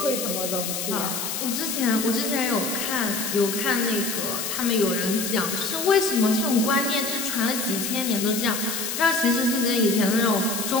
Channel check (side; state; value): left; noise; hiss, 3 dB below the sound